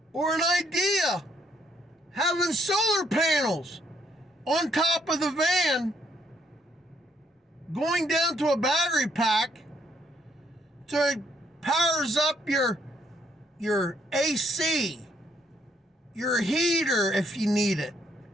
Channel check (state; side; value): normal; both; correlation 0.70